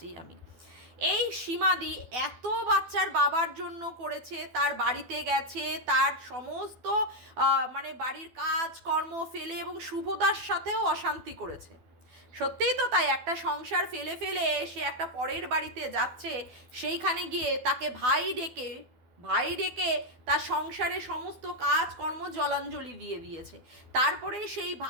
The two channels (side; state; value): left; late; 12 ms